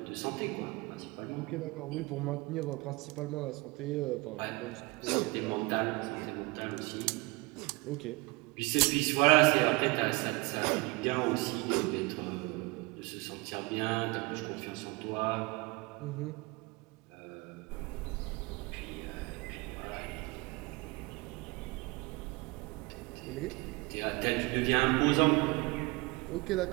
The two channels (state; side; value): quieter; left; 25.4 dB